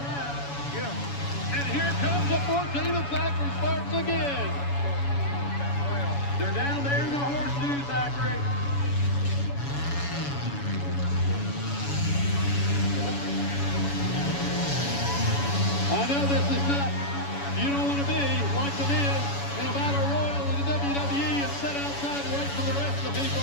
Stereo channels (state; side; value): late; right; 7.1 ms